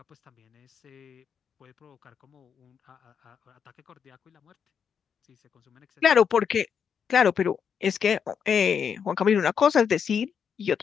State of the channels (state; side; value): quieter; right; 7.2 dB